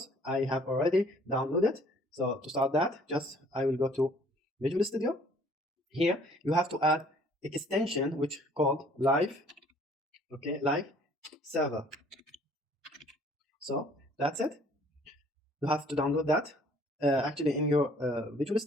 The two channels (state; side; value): normal; both; correlation 0.57